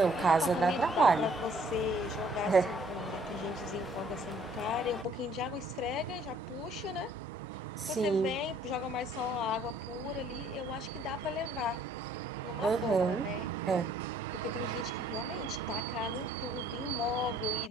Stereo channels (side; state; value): both; normal; correlation 0.60